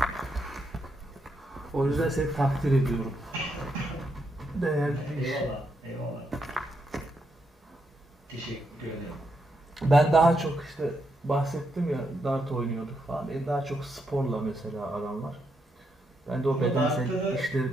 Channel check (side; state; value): both; normal; correlation 0.80